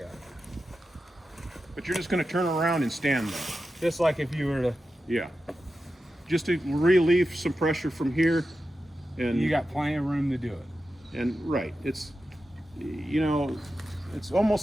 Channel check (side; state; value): both; normal; correlation 0.91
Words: but you're just going to turn around and stand there. Just like if you were to, Yeah. Just to relieve some pressure from here. And you got plenty of room to do it. And right, it's it's